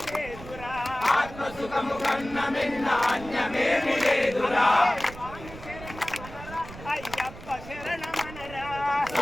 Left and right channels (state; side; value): noise; right; rumble, 14 dB below the sound